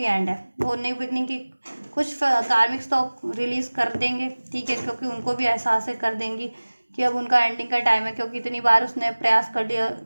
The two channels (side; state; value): both; inverted; correlation -1.00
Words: एंड है, वो न्यू बिगनिंग की कुछ कार्मिक्स तो रिलीज कर देंगे, ठीक है, क्योंकि उनको भी एहसास है कर देंगी कि अब उनका एंडिंग का टाइम है, क्योंकि इतनी बार उसने प्रयास कर दिया